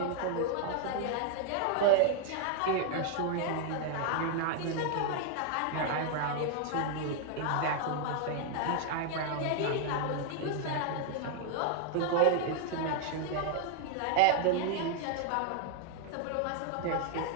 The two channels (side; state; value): both; different; correlation 0.00